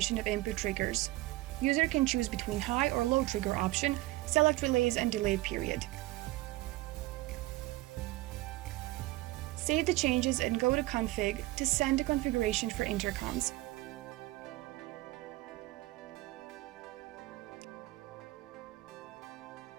of input triggers. User can choose between high or low trigger option, select relays and delay period. Save the changes and go to Config to send the configuration for intercoms.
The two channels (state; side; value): quieter; left; 18.8 dB